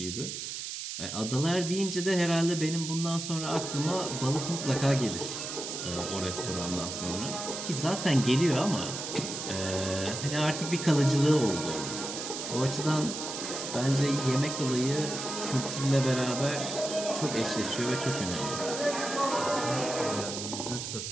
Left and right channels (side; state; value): right; noise; hiss, 6 dB below the sound